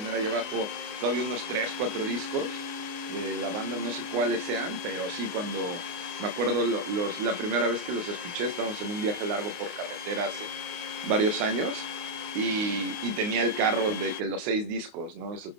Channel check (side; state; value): left; late; 28 ms